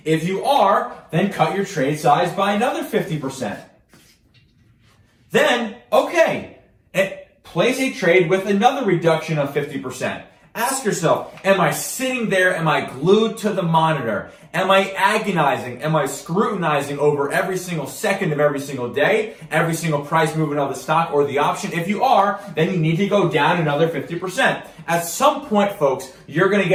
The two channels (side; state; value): both; identical; correlation 1.00